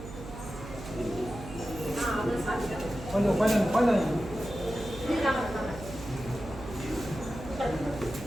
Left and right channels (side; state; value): right; noise; hum, 12 dB below the sound